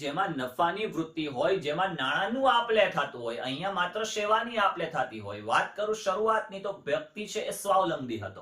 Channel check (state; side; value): identical; both; correlation 1.00